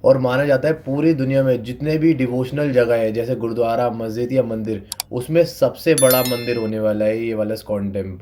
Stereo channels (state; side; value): identical; both; correlation 1.00